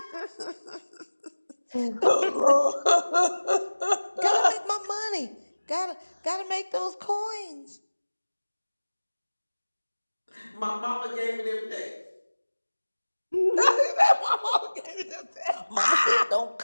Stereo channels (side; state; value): both; inverted; correlation -1.00